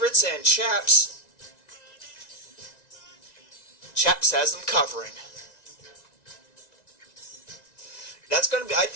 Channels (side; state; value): right; late; 1.9 ms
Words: and Chaps has them covering. That's going to be,